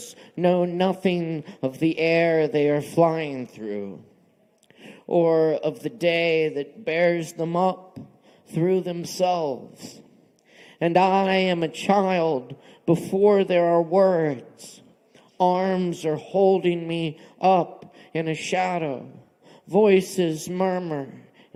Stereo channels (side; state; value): both; identical; correlation 1.00